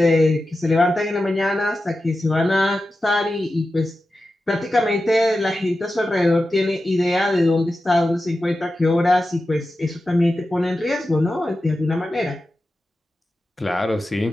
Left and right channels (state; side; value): normal; both; correlation 0.92